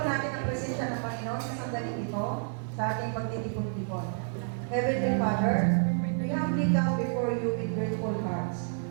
natin ang presensya ng Panginoon sa sandaling ito sa ating pagtitipon-tipon. Heavenly Father, we humbly come before you with grateful hearts.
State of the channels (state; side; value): silent; left; 58 dB below the other